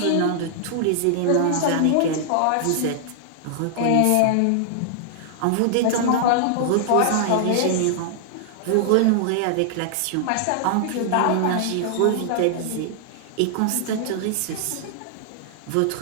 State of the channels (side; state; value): both; different; correlation -0.01